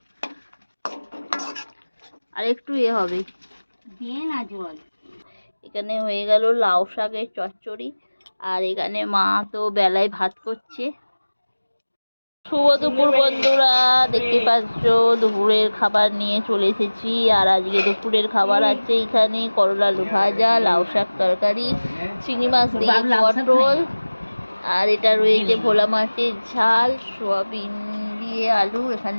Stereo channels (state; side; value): inverted; both; correlation -1.00